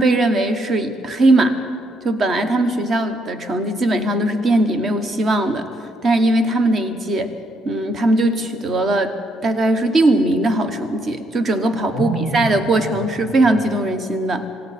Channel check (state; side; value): normal; both; correlation 0.75